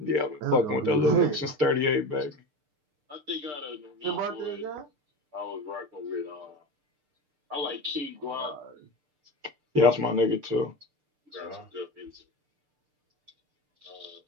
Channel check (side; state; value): left; late; 6.7 ms